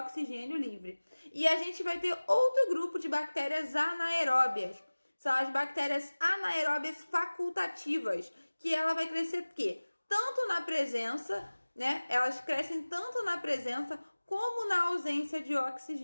livre. E a gente vai ter outro grupo de bactérias anaeróbias. São as bactérias anaeróbias facultativas, que ela vai crescer o quê? Tanto na presença, né? Elas crescem tanto na presença como na ausência de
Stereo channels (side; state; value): both; inverted; correlation -1.00